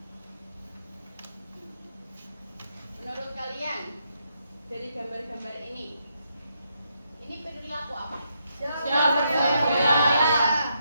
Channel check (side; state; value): both; inverted; correlation -0.79